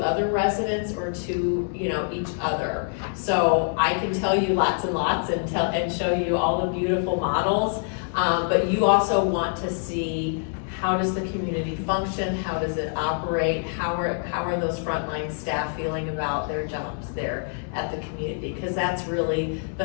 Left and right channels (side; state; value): right; silent; 61 dB below the other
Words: other residents or to each other. So I can tell you lots and lots and show you all the beautiful models, but you also want to see, how does the community function? How does it operate? How are those frontline staff feeling about their jobs there at the community? Because that's really